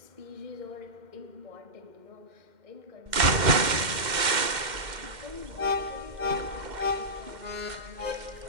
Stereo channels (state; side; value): late; left; 2.1 ms